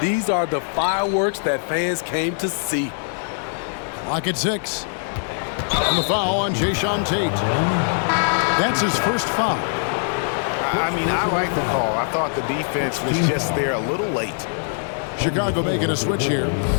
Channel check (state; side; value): silent; right; digital silence